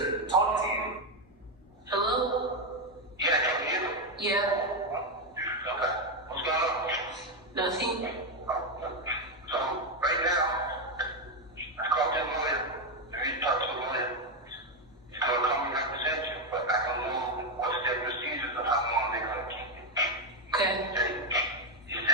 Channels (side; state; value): both; normal; correlation 0.06